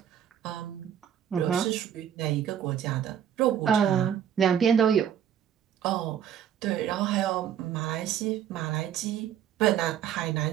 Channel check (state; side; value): quieter; left; 9.5 dB